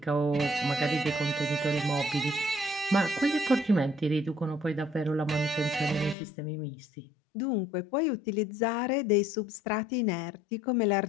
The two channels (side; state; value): right; drops out; at 6.2 s